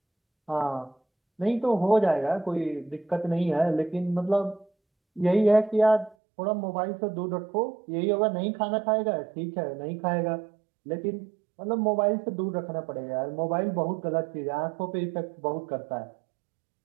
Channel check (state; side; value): drops out; left; at 6.2 s